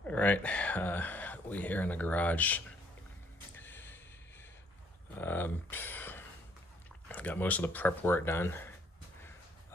All right, we here in the garage. Got most of the prep work done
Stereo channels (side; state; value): both; normal; correlation 0.65